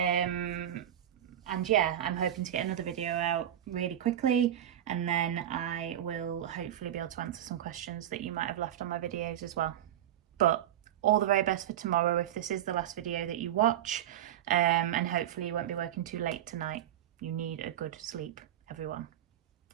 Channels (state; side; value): quieter; left; 11.3 dB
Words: yeah, I'm hoping to get another video out really quickly, and then I will hopefully be able to answer some questions that you might have left on my videos as well. But all the very best for tomorrow if this is the last video that you watch, and hopefully you won't be working too late tonight. You need a good sleep, everyone.